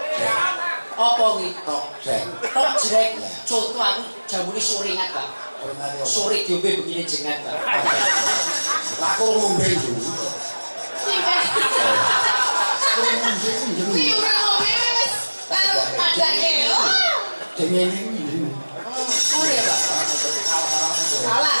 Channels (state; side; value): inverted; both; correlation -1.00